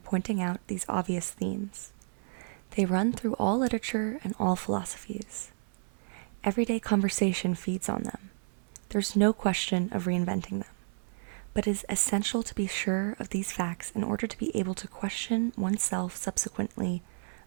pointing out these obvious themes. They run through all literature and all philosophies. Everyday conversation feeds on them. There's no question of reinventing them. But it is essential to be sure of these facts in order to be able to question oneself subsequently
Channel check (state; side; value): silent; left; 57 dB below the other